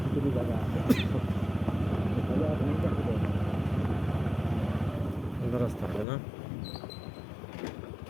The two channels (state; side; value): drops out; right; at 6.1 s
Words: কিছু জায়গা সুন্দর রাস্তা হবে না?